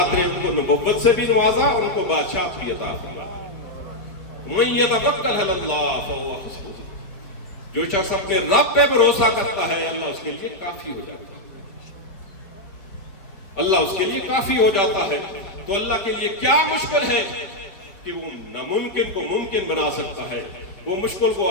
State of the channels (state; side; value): late; right; 4.6 ms